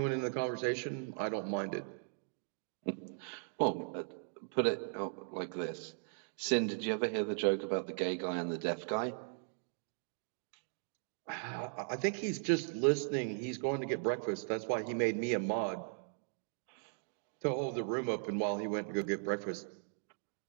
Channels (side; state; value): left; silent; digital silence